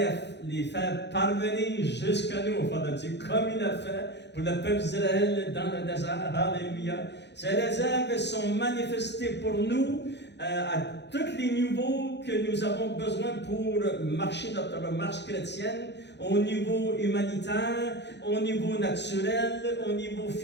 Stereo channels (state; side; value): late; right; 0.50 ms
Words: les faire parvenir jusqu'à nous, enfants de Dieu, comme il a fait pour le peuple d'Israël dans le désert. Alléluia. Ces réserves sont manifestées pour nous à tous les niveaux que nous avons besoin pour marcher notre marche chrétienne, au niveau humanitaire, au niveau naturel, au niveau